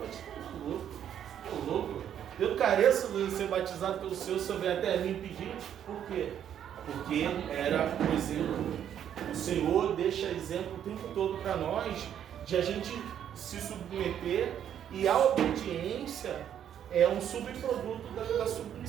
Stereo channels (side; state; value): left; quieter; 9.7 dB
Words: Tô louco. Eu careço de ser batizado pelo Senhor vem até mim pedir. Por quê? Porque era o exemplo. O Senhor deixa exemplo o tempo todo para nós, de a gente se submeter, e a obediência é um subproduto da